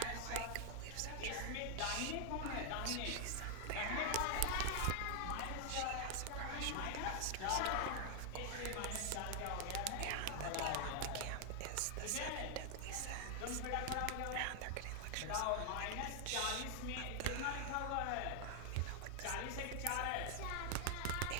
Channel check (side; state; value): both; different; correlation 0.00